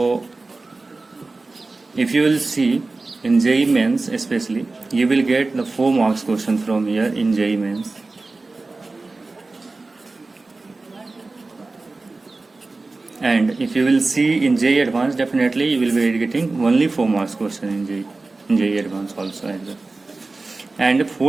if you will see in JEE Mains especially, you will get the 4 marks question from here in JEE Mains. And if you will see in JEE Advanced, definitely you will be getting only 4 marks question in JEE Advanced also as well. And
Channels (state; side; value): quieter; left; 3.5 dB